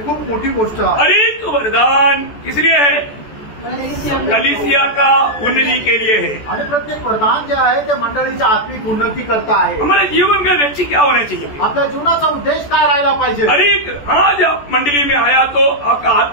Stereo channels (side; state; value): right; late; 14 ms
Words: खूप मोठी गोष्ट आहे. हर एक वरदान इसलिए है कलीसिया का उन्नति के लिए है. आणि प्रत्येक वरदान जे आहे ते मंडळीच्या आत्मिक उन्नती करता आहे. हमारे जीवन का लक्ष्य क्या होना चाहिए? आपल्या जीवनाचा उद्देश काय राहायला पाहिजे? हर एक आज आप मंडली में आया तो आपका